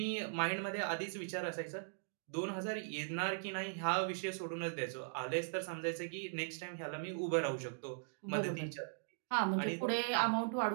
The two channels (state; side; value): silent; left; digital silence